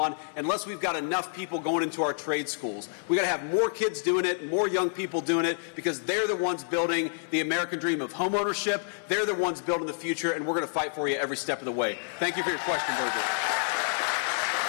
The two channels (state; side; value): silent; right; 59 dB below the other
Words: unless we've got enough people going into our trade schools. We got to have more kids doing it, more young people doing it, because they're the ones building the American dream of home ownership. They're the ones building the future, and we're going to fight for you every step of the way. Thank you for your question, Virgil.